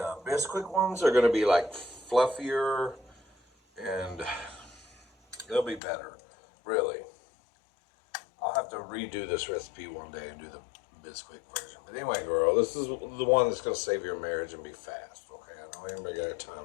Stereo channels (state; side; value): drops out; right; at 5.8 s